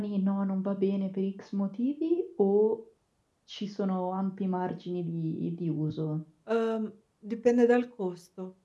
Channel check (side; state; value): both; identical; correlation 1.00